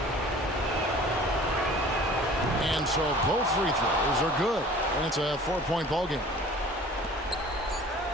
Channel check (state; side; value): normal; both; correlation 0.46